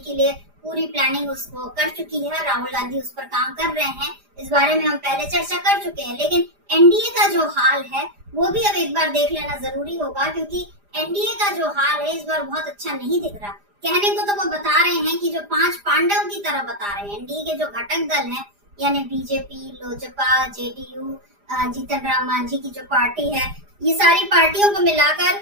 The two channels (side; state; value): left; late; 4.9 ms